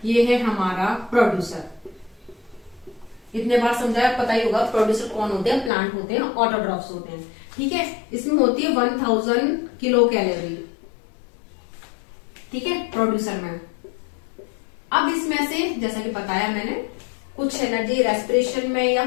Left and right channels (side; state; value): right; drops out; at 5.7 s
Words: ये है हमारा प्रोड्यूसर, इतने बार समझाया, पता ही होगा प्रोड्यूसर कौन होते हैं, प्लांट होते हैं, ऑटोट्रॉफ्स होते हैं, ठीक है। इसमें होती है 1000 किलो कैलोरी, ठीक है, प्रोड्यूसर में। अब इसमें से जैसा कि बताया मैंने, कुछ एनर्जी रेस्पिरेशन में या